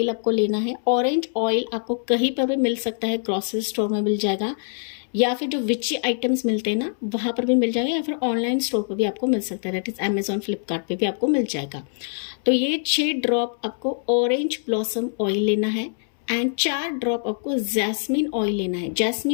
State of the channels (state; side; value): silent; right; 63 dB below the other